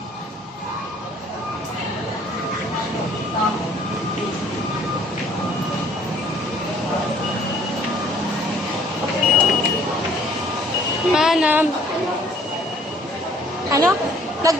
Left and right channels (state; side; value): normal; both; correlation 0.57